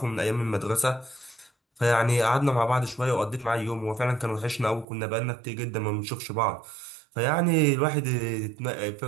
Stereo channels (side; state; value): left; drops out; at 4.9 s